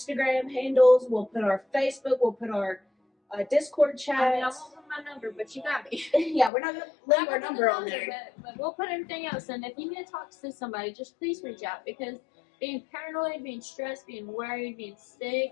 handles. We'll put our Facebook. We'll put our Discord I mean, I chats. won't put my number, but you got me. Yeah, we're not gonna leave our Not number on gonna there. put it, but we'll put everything else. And if you need to talk to somebody, just please reach out, because being paranoid, being stressed, being worried, being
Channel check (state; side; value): drops out; right; at 6.5 s